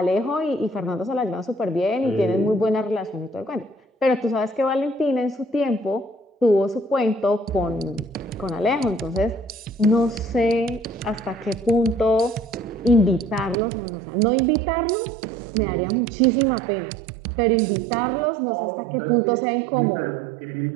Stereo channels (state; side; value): drops out; left; at 13.6 s